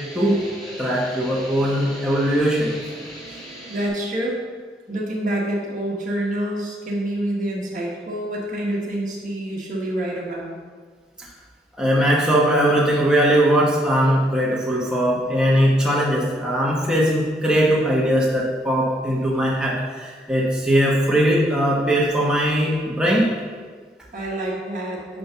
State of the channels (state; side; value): normal; both; correlation 0.71